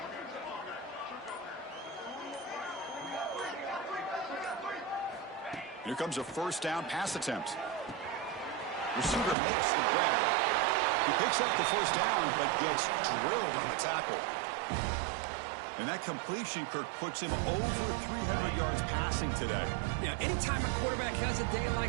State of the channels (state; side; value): drops out; left; at 9.3 s